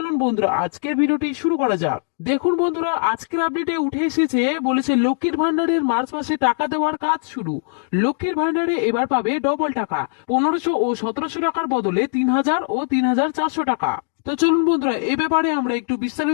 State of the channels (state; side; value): silent; right; digital silence